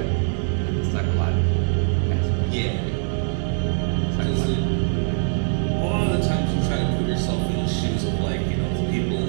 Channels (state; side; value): silent; left; 64 dB below the other